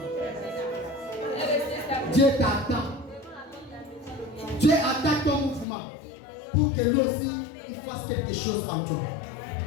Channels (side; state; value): right; drops out; at 5.7 s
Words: Dieu t'attend. Dieu attend ton mouvement pour que lui aussi il fasse quelque chose en toi.